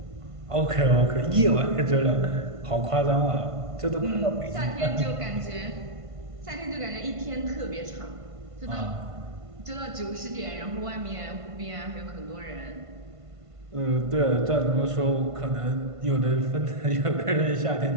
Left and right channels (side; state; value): left; late; 1.5 ms